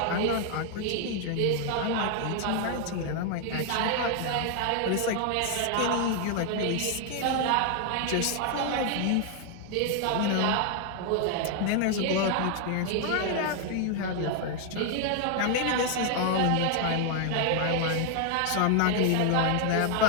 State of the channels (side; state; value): both; different; correlation 0.00